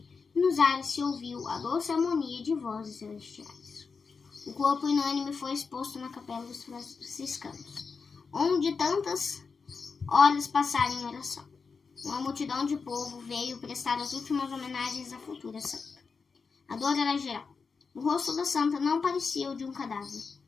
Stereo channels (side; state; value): right; quieter; 5.1 dB